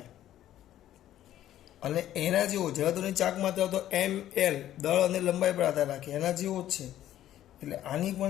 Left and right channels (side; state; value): right; quieter; 12.5 dB